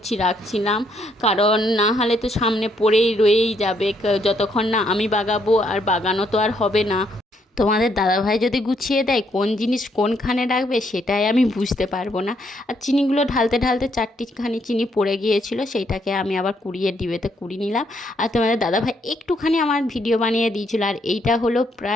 রাখছিলাম, কারণ না হলে তো সামনে পড়েই রয়েই যাবে, যতক্ষণ না আমি বাগাবো, আর বাগানো তো আর হবে না। তোমাদের দাদাভাই যদি গুছিয়ে দেয় কোন জিনিস কোনখানে রাখবে, সেটাই আমি বুঝতে পারবো না। আর চিনিগুলো ঢালতে ঢালতে 4টিখানি চিনি পড়ে গিয়েছিল, সেইটাকে আমি আবার কুড়িয়ে ডিবেতে কুড়িয়ে নিলাম। আর তোমাদের দাদাভাই একটুখানি আমার ভিডিও বানিয়ে দিয়েছিল। আর এইটা হলো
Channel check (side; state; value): both; normal; correlation 0.72